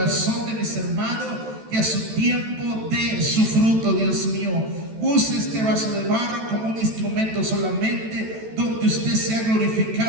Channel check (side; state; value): left; late; 14 ms